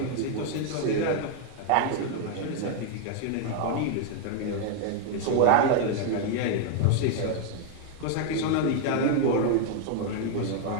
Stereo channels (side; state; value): both; different; correlation 0.00